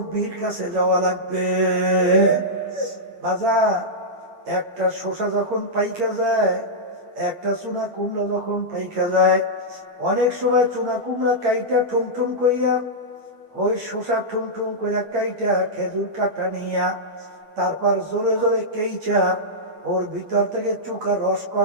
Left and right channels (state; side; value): late; left; 8.8 ms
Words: কাছে যাওয়া লাগবে। বাজান একটা শসা যখন পাইকা যায়, একটা চুনা কুমড়া যখন পাইকা যায়, অনেক সময় চুনা কুমড়া কাইটা ঠুমঠুম কইরা, ওই শসা ঠুমঠুম কইরা কাইটা খেজুর কাটা নিয়া তারপর জোরে জোরে কেইচা ওর ভিতর থেকে চুকা